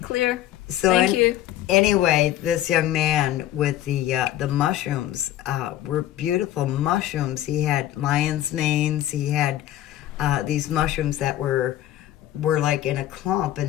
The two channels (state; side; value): quieter; right; 13.2 dB